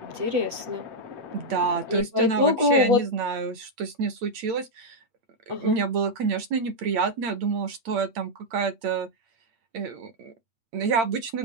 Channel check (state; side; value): late; left; 8.8 ms